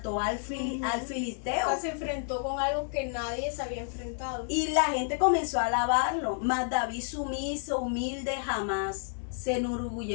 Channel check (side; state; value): right; silent; 58 dB below the other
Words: al filisteo. O sea, se enfrentó con algo que nadie se había enfrentado. Y la gente comenzó a alabarlo. Mas David, sumiso, humilde, jamás se